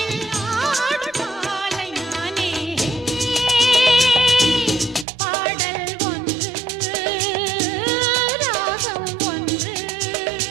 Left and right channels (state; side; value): drops out; left; at 5.1 s